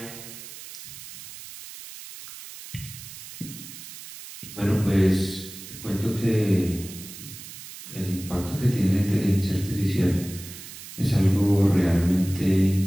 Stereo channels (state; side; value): noise; right; hiss, 14 dB below the sound